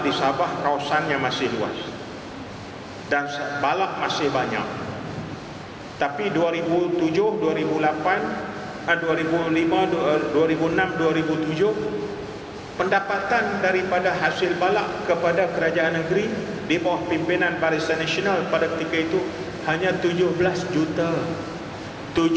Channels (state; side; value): identical; both; correlation 1.00